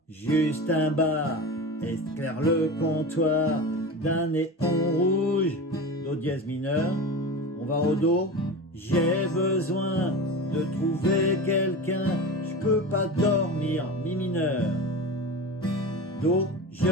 juste un bar, éclaire le comptoir d'un néon rouge, do dièse mineur. On va au do, j'ai besoin de trouver quelqu'un, je peux pas dormir, mi mineur. Do,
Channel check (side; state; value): both; normal; correlation 0.28